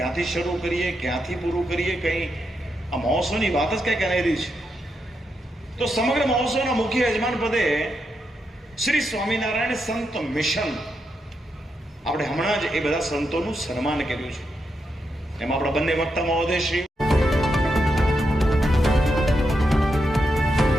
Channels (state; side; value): normal; both; correlation 0.84